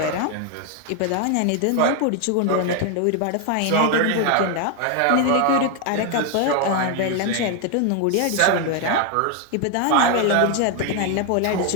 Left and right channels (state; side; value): different; both; correlation 0.01